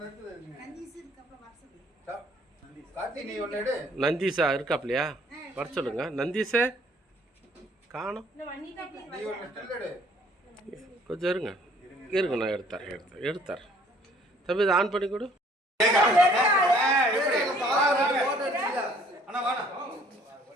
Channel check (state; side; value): normal; both; correlation 0.58